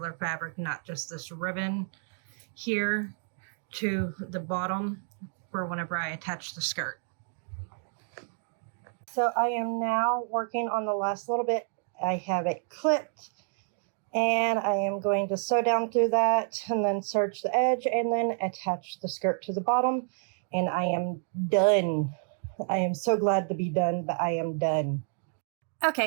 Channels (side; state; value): left; silent; digital silence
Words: fabric, not just this ribbon here, to the bottom for whenever I attach the skirt. So I am now working on the last little bit. I have it clipped, and I am going to sew down through that and then serge the edge and then attach the skirt to the bottom, and I am done. I am so glad to be done, but I am done.